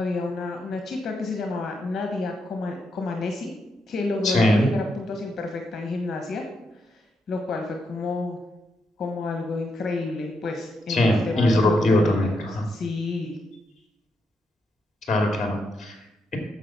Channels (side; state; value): both; normal; correlation 0.82